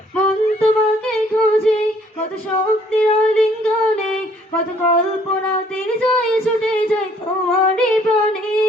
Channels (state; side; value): normal; both; correlation 0.62